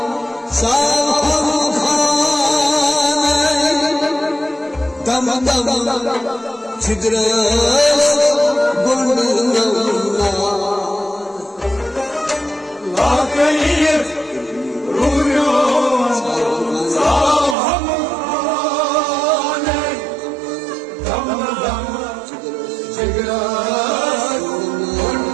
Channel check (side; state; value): left; drops out; at 17.6 s